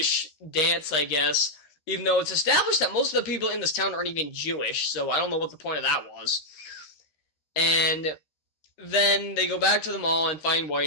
dance, I guess, even though it's established that most of the people in this town aren't even Jewish, so I don't know what the point of that was. And then they go back to the mall and find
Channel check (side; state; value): right; late; 13 ms